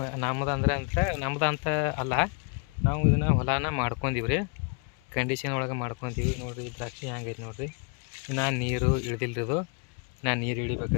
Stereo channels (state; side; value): quieter; right; 34.9 dB